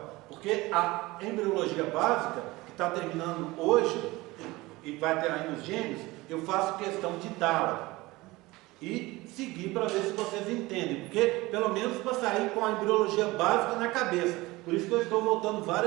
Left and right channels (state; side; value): quieter; left; 20.7 dB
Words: porque a embriologia básica, que está terminando hoje, e vai ter aí nos gêmeos, eu faço questão de dá-la e seguir para ver se vocês entendem, porque pelo menos para sair com a embriologia básica na cabeça. Por isso que eu estou voltando